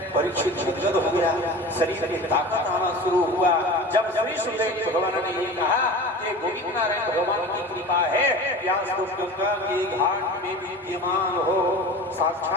परीक्षित गदगद हो गया, शरीर में ताकत आना शुरू हुआ। जब श्री सुखदेव भगवान ने ये कहा कि गोविंद नारायण भगवान की कृपा है, व्यास तो गंगा के घाट में विद्यमान हो,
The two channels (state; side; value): normal; both; correlation 0.36